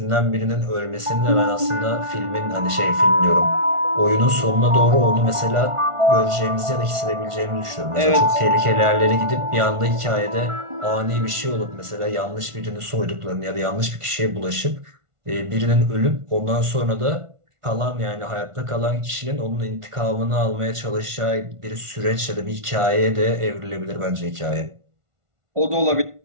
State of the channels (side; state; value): left; late; 1.5 ms